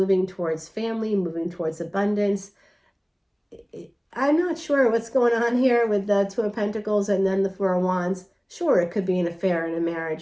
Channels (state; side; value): identical; both; correlation 1.00